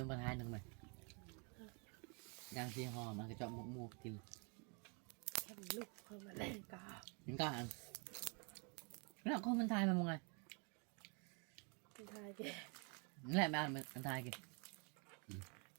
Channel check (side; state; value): left; quieter; 35.2 dB